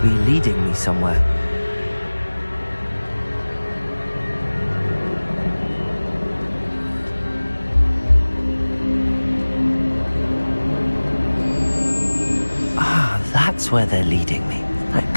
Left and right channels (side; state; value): both; inverted; correlation -1.00